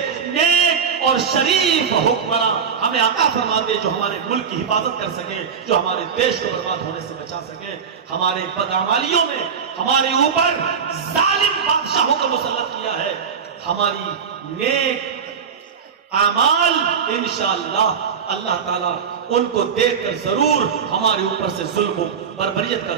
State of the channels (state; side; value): quieter; left; 6.7 dB